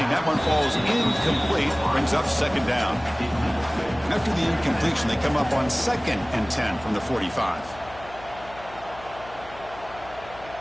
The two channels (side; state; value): left; noise; hum, 18 dB below the sound